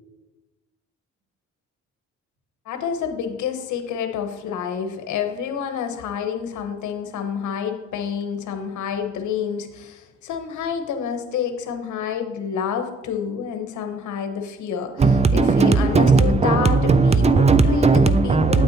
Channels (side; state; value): both; normal; correlation 0.59